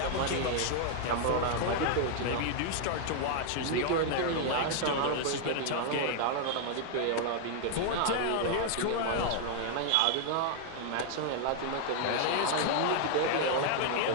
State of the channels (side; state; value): both; different; correlation 0.00